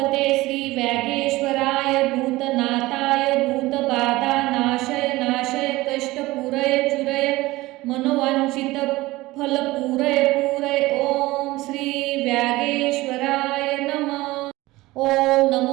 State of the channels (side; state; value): left; quieter; 19.4 dB